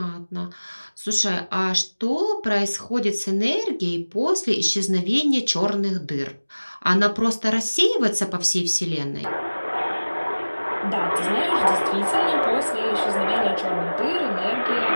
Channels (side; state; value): both; inverted; correlation -1.00